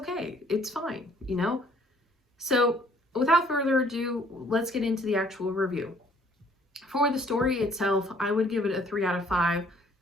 It's fine, you know? So without further ado, let's get into the actual review. For the story itself, I would give it a 3 out of 5.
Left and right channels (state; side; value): normal; both; correlation 0.60